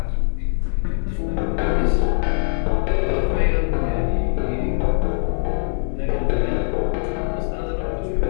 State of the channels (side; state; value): right; silent; digital silence